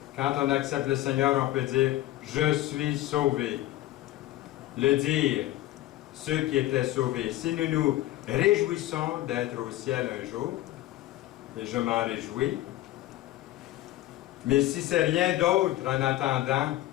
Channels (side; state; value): right; quieter; 15.3 dB